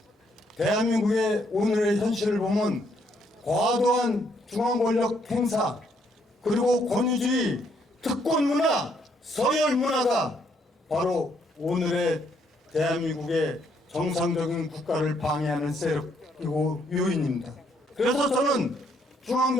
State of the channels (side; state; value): both; normal; correlation 0.71